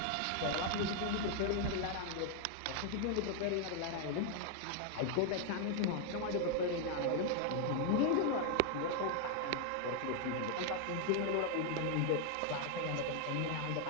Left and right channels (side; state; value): both; different; correlation 0.00